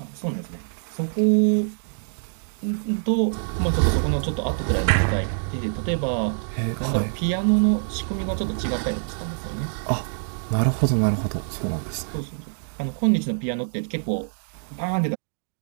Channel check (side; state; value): left; silent; digital silence